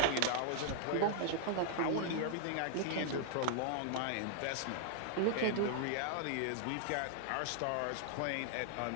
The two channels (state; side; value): different; both; correlation 0.00